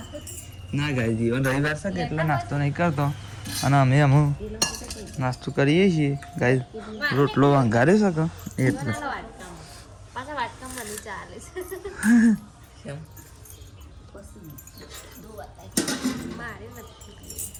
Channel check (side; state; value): both; identical; correlation 1.00